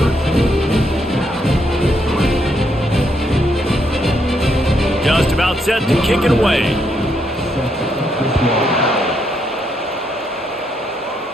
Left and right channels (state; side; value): normal; both; correlation 0.76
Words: Just about set to kick it away.